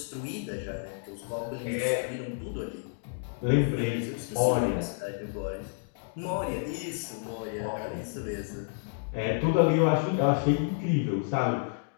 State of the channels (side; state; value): right; silent; digital silence